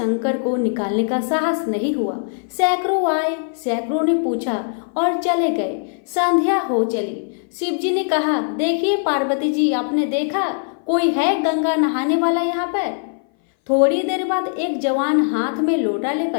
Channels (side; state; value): right; silent; 58 dB below the other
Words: को निकालने का साहस नहीं हुआ। सैकड़ों आए, सैकड़ों ने पूछा और चले गए। संध्या हो चली। शिव जी ने कहा, देखिए पार्वती जी, आपने देखा कोई है गंगा नहाने वाला यहाँ पर? थोड़ी देर बाद एक जवान हाथ में लोटा